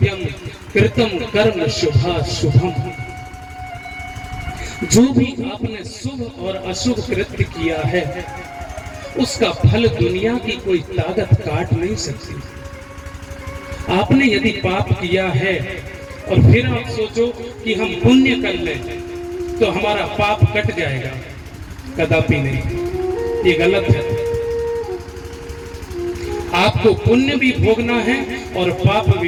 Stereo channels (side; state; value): both; identical; correlation 1.00